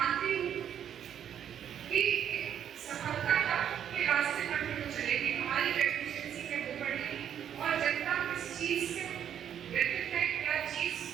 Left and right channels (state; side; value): quieter; left; 9.3 dB